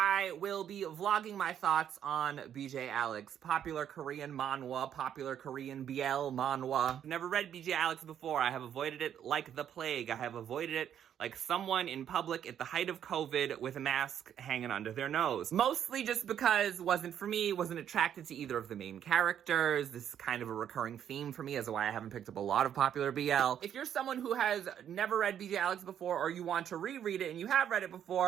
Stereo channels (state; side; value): quieter; left; 9.6 dB